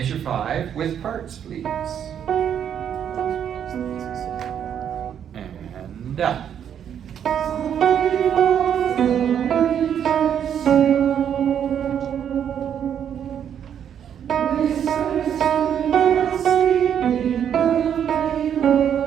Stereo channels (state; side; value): quieter; left; 8.9 dB